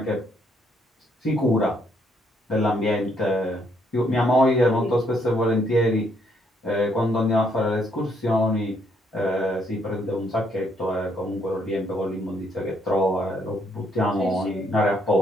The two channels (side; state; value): both; normal; correlation 0.71